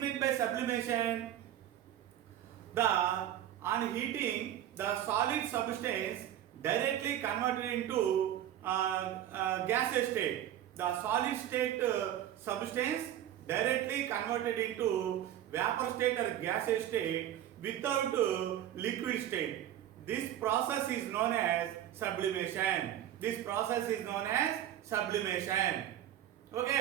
meant by sublimation? On heating, the solid substance directly converted into gaseous state. The solid state substance directly converted into vapor state or gaseous state without liquid state. This process is known as sublimation.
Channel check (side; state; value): left; quieter; 11.6 dB